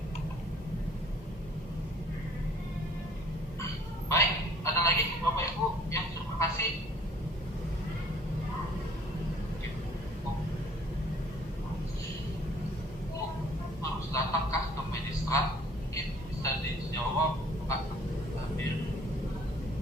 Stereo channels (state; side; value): normal; both; correlation 0.55